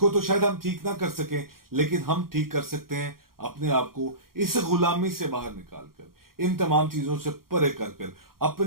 تو شاید ہم ٹھیک نہ کر سکیں، لیکن ہم ٹھیک کر سکتے ہیں اپنے آپ کو اس غلامی سے باہر نکال کر، ان تمام چیزوں سے پرے کر کر،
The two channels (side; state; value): left; late; 0.92 ms